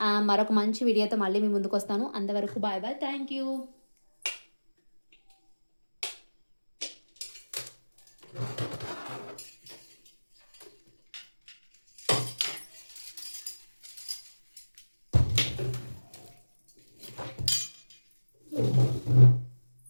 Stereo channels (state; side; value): inverted; both; correlation -1.00